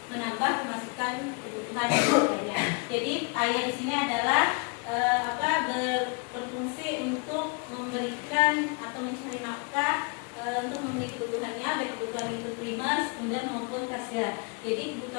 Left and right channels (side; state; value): right; quieter; 34.1 dB